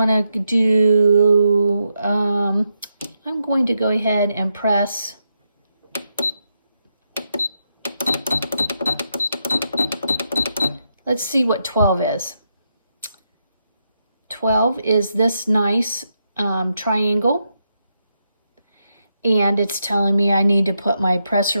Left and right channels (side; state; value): both; inverted; correlation -0.82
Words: to do, I'm going to go ahead and press let's see what 12 is. 12 is this nice triangle. And it's telling me I need to put my